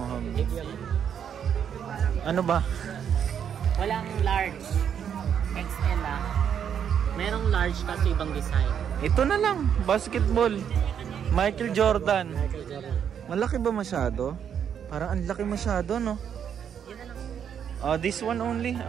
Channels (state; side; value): quieter; left; 8.4 dB